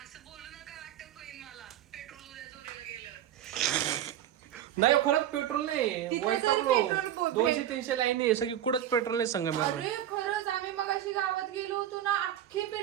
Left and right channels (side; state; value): left; quieter; 11.4 dB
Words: नाही खरंच पेट्रोल नाही, वैतागलो. 200-300 लाईन आहे सगळी, कुठंच पेट्रोल नाही संगमेश्वर. अरे खरंच, आम्ही मगाशी गावात गेलो होतो ना, अख्खे